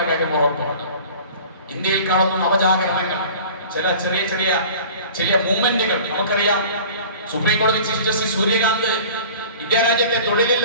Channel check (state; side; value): inverted; both; correlation -0.43